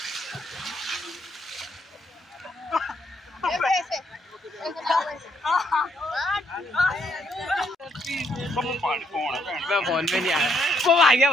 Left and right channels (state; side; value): normal; both; correlation 0.72